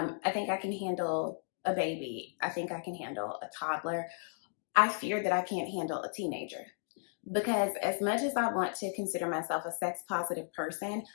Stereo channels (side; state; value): right; silent; digital silence